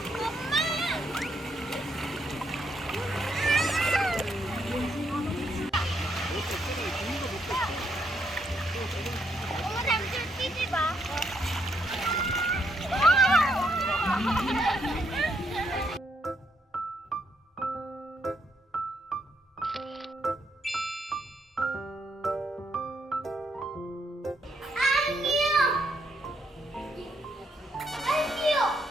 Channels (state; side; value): normal; both; correlation 0.76